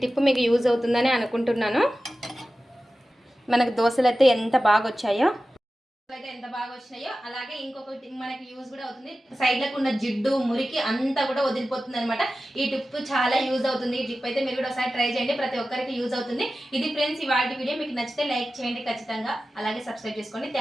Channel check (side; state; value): both; normal; correlation 0.95